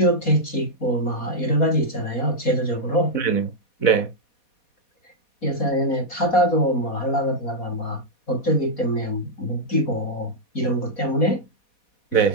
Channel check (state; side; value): late; right; 4.2 ms